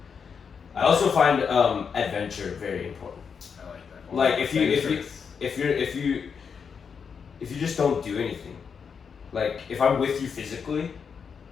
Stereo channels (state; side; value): quieter; right; 6.3 dB